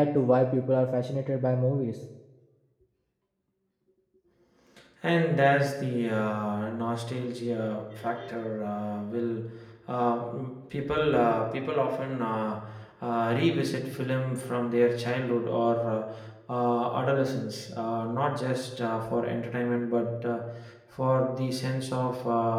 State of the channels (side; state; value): both; identical; correlation 1.00